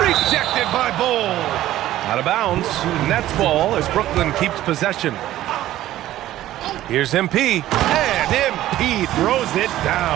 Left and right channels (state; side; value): quieter; left; 14.1 dB